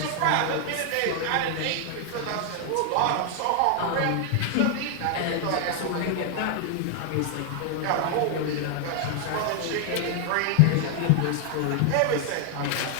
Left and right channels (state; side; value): different; both; correlation 0.00